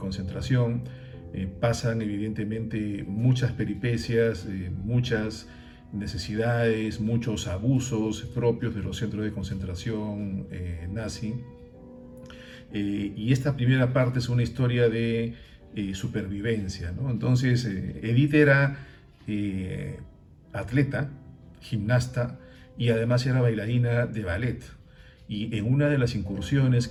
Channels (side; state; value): both; identical; correlation 1.00